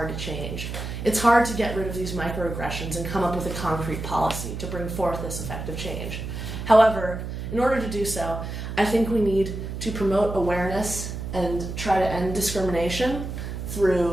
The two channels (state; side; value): noise; right; hum, 6 dB below the sound